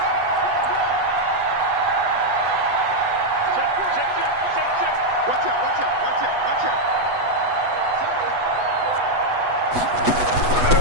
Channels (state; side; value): late; left; 8.1 ms